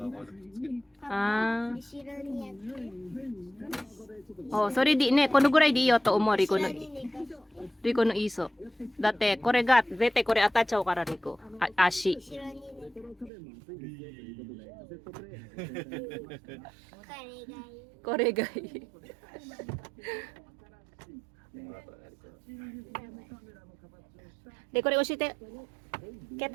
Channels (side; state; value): left; drops out; at 13.3 s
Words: Ah. Oh, それでね、このぐらいでいいよと思う、リコのイーソ。だって、これが、絶対これ当たっちゃうから、リコ。足。これがいい。で、これ教えて。携